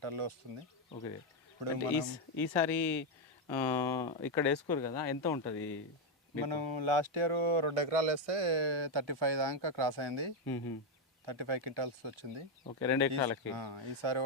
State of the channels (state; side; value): normal; both; correlation 0.05